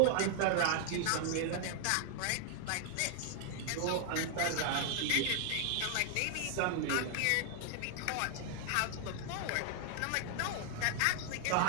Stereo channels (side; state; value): both; different; correlation 0.00